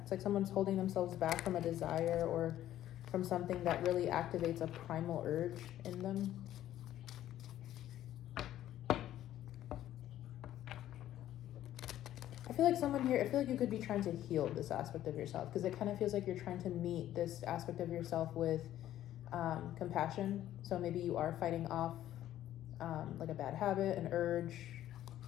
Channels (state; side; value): quieter; right; 12.7 dB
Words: it's like someone's holding themselves back from a desire or from something that really activates a primal urge in them. I feel like someone here, I feel like you could be trying to heal this aspect of yourself, because it kind of feels like you're trying to meet this aspect of yourself with compassion. So maybe you are fighting off like a bad habit, an urge.